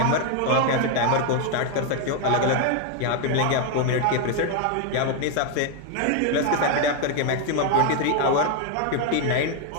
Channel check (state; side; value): different; both; correlation 0.01